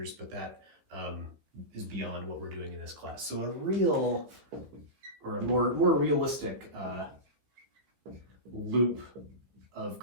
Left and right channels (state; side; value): late; left; 15 ms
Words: but that is beyond what we're doing in this class. So a real, or a more realistic loop of